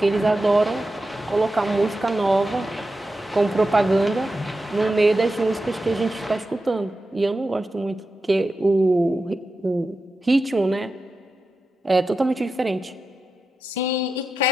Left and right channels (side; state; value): both; normal; correlation 0.91